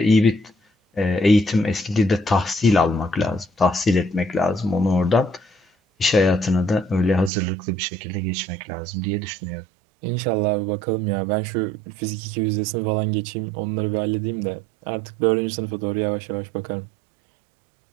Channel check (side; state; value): left; drops out; at 7.3 s